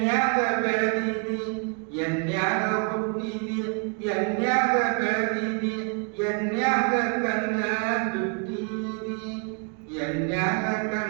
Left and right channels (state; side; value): quieter; left; 38.7 dB